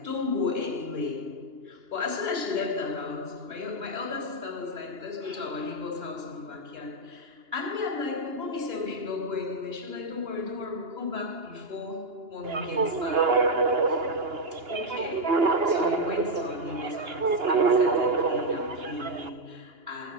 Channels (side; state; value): left; late; 2.9 ms